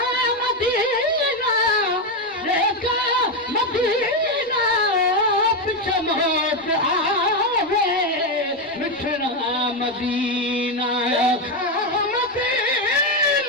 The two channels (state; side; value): normal; both; correlation 0.07